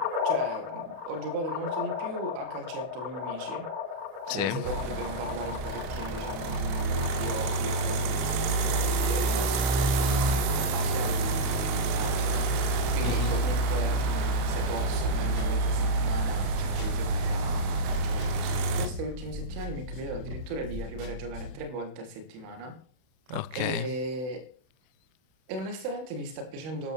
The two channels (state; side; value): late; left; 31 ms